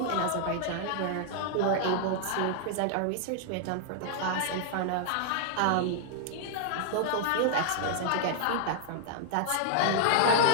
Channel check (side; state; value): both; different; correlation -0.01